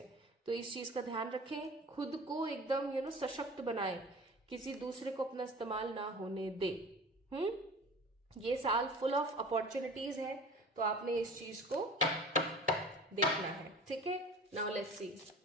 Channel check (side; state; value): both; normal; correlation 0.40